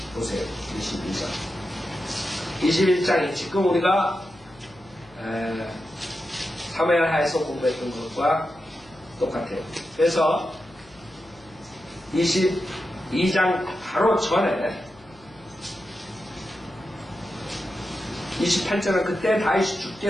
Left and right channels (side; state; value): left; noise; hum, 27 dB below the sound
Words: 보세요. 22장. 21장이 지금 우리가 사무엘 하에서 공부했던 것과 똑같아요. 그래서 22장 바로 전에 28절은 그때 다윗이